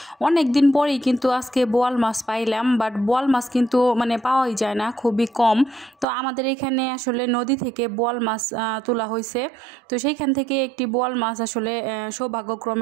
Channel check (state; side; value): drops out; left; at 6.1 s